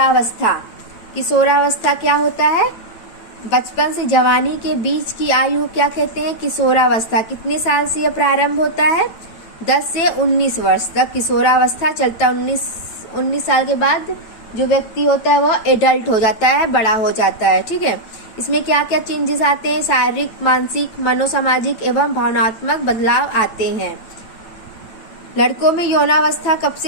किशोरावस्था क्या होता है? बचपन से जवानी के बीच की आयु क्या कहते हैं? किशोरावस्था। कितने साल से यह प्रारंभ होता है? 10 से 19 वर्ष तक किशोरावस्था चलता है। 19 साल के बाद जो व्यक्ति होता है वह एडल्ट हो जाता है, बड़ा हो जाता है। ठीक है। इसमें क्या क्या चेंजेस आते हैं? शारीरिक, मानसिक, मनोसामाजिक एवं भावनात्मक बदलाव आते हैं। लड़कों में यौनावस्था कब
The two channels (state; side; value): late; right; 8.9 ms